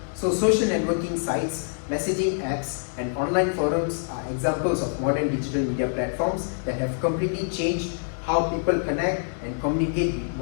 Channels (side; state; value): right; silent; digital silence